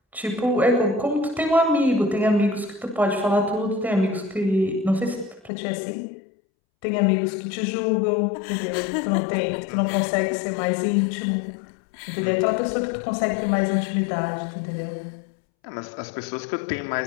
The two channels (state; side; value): drops out; right; at 5.5 s